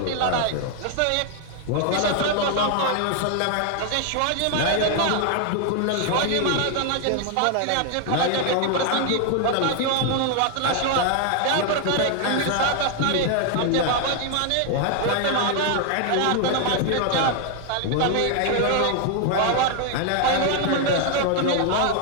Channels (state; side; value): different; both; correlation 0.00